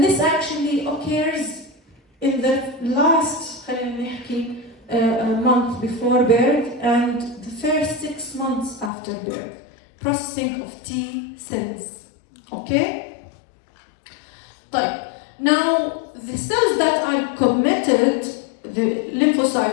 this actually occurs in the last month before birth and the first 6 months after birth. Processing of T cells. Okay? Now, the cells that are committed, the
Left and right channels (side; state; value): right; drops out; at 8.9 s